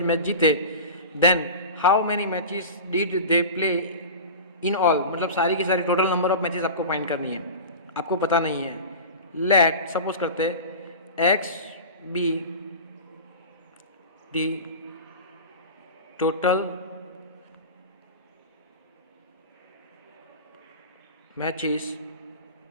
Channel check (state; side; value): inverted; both; correlation -0.31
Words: मैच जीते, then how many matches did they play in all, मतलब सारी की सारी टोटल नंबर ऑफ मैचेस आपको फाइंड करनी है, आपको पता नहीं है। लेट सपोज करते X B the total matches